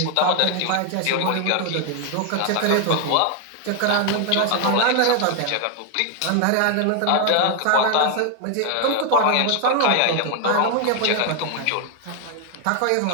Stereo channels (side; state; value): both; different; correlation 0.00